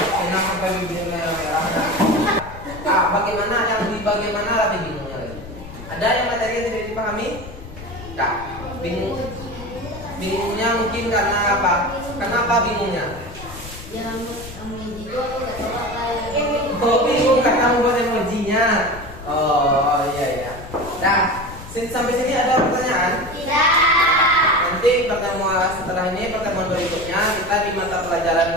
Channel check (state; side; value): noise; left; rumble, 14 dB below the sound